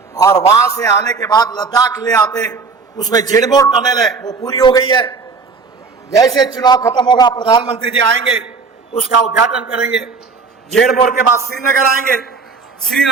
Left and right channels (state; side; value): quieter; left; 4.7 dB